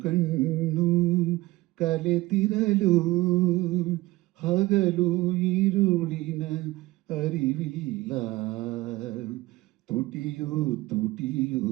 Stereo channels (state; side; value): quieter; left; 19.3 dB